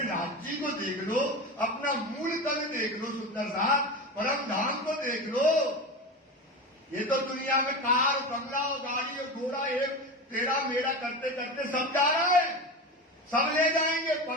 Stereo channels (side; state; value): both; normal; correlation 0.24